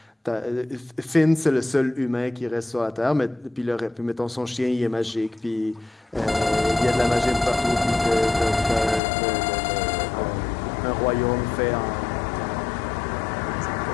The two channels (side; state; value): right; drops out; at 9.0 s